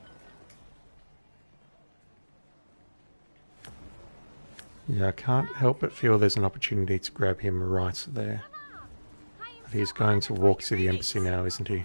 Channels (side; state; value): both; inverted; correlation -1.00